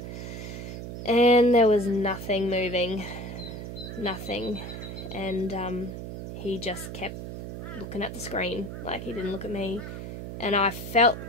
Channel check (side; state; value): right; noise; hum, 8 dB below the sound